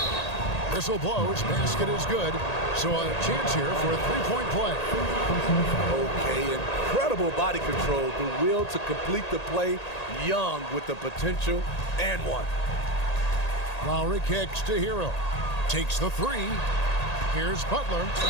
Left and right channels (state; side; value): late; right; 1.8 ms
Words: whistle blows. Basket is good. So a chance here for a three-point play. Okay, incredible body control. The will to complete the play. Young with the potential and one. Lowry kicks to Hero. Takes the three. Here's Butler.